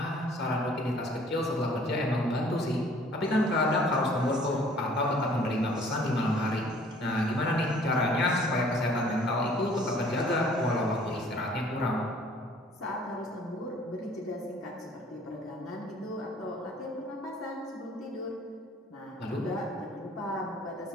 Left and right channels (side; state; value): both; normal; correlation 0.55